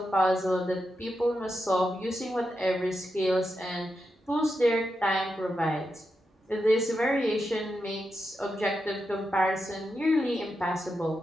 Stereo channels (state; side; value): normal; both; correlation 0.87